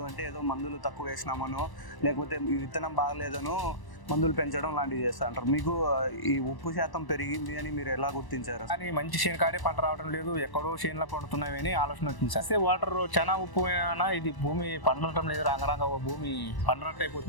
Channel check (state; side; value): late; right; 1.0 ms